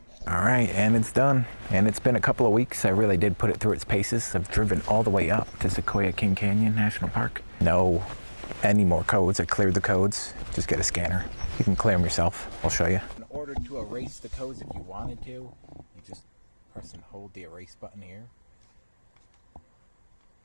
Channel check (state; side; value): inverted; both; correlation -1.00